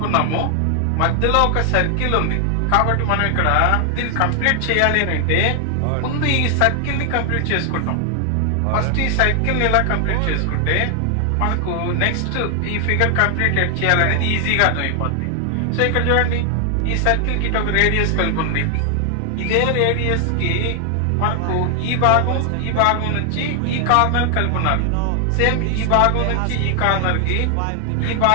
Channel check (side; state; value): both; different; correlation 0.00